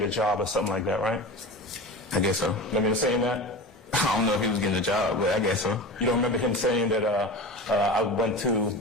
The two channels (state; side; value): normal; both; correlation 0.31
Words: a job or something like that, right? I guess so. Remember him saying that? I don't know if he was getting a job, but I guess so. You don't remember him saying that I went to